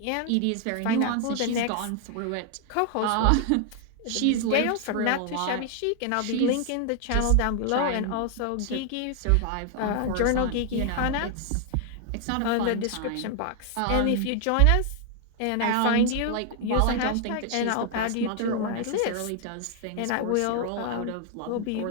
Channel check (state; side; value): different; both; correlation 0.00